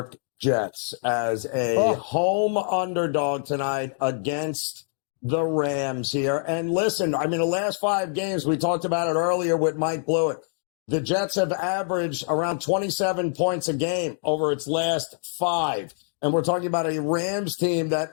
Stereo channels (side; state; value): right; silent; digital silence